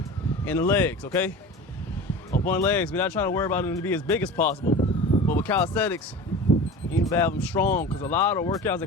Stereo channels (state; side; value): normal; both; correlation 0.34